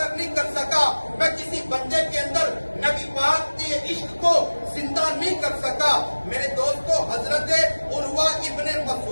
نہیں کر سکا میں کسی بندے کے اندر نبی پاک کے عشق کو زندہ نہیں کر سکا میرے دوستو حضرت عروہ ابن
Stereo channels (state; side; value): inverted; both; correlation -1.00